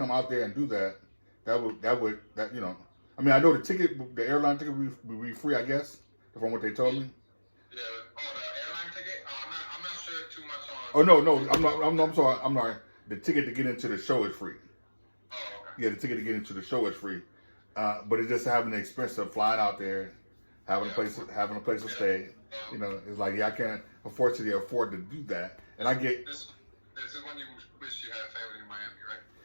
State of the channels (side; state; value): both; inverted; correlation -1.00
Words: out there and do that, that would you know. I mean, I know the airline ticket would be free, I guess, from what they told me. Yeah. Oh, the airline ticket. I'm not sure too much on. Oh no, I'm sorry. I'm sorry. The ticket to get into the show is free. Oh, okay. Yeah, the ticket to get into the show is free. But it's just having the expense of flying out there, having a place to stay. You know, it's like, yeah, I can't afford to do that. And I get this is when you wish you had family in Miami, right?